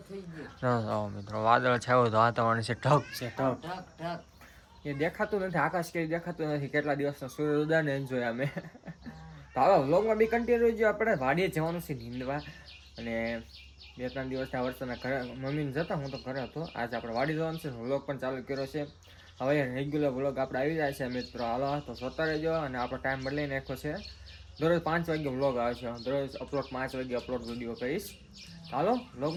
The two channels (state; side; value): identical; both; correlation 1.00